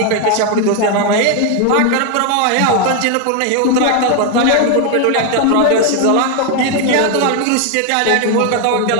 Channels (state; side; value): different; both; correlation 0.01